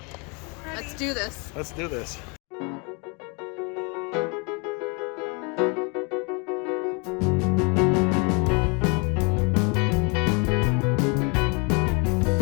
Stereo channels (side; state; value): right; quieter; 32.5 dB